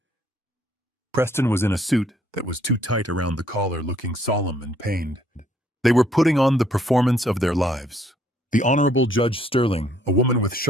Preston was in a suit that was too tight around the collar, looking solemn and pained. They were putting on the performance of their lives. The Honorable Judge Sterling, a woman with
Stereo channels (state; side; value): normal; both; correlation 0.65